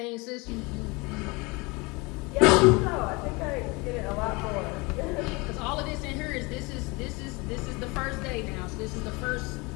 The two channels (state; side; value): quieter; right; 26.2 dB